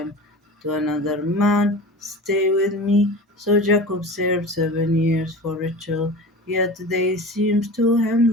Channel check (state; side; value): normal; both; correlation 0.34